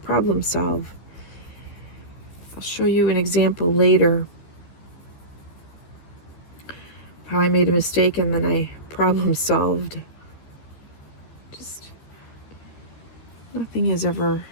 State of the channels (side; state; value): right; late; 13 ms